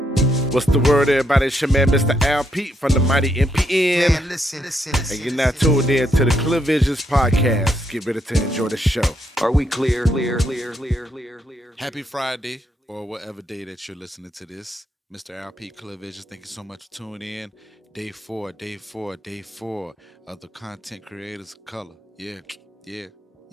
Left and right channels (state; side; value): normal; both; correlation 0.76